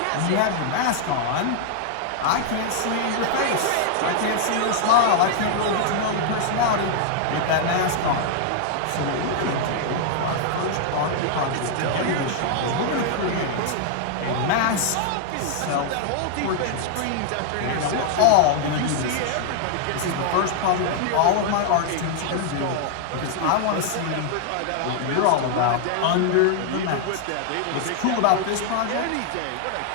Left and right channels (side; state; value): both; different; correlation 0.00